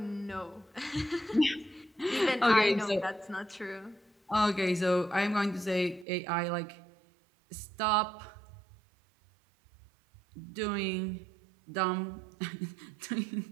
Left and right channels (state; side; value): drops out; left; at 6.1 s